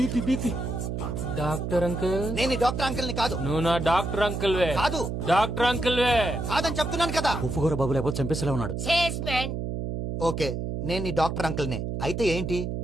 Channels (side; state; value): right; noise; hum, 3 dB below the sound